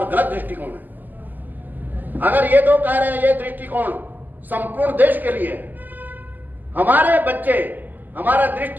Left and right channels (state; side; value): late; left; 0.086 ms